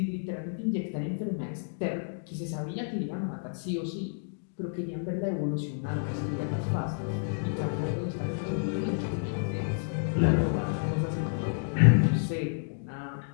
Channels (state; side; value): silent; right; digital silence